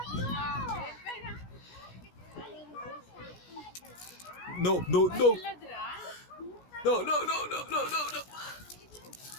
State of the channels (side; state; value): right; late; 17 ms